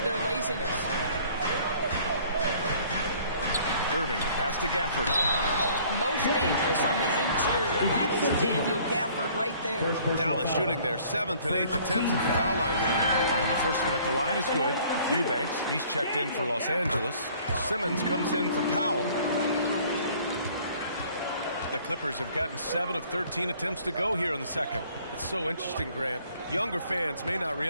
their laziness. Irving, the pass to Gafford. Most dangerous on the interior. That is Daniel Gafford right there. Dallas shooting their 7th and 8th attempts at the foul line tonight. And the first one at the line is good. Eubanks, he's checked in for Los Angeles. Simmons comes in for Powell. The Clippers have gotten 7 of 13 attempts to go here in the second. It's so interesting, Grant. Younger fans may not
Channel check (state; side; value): inverted; both; correlation -0.55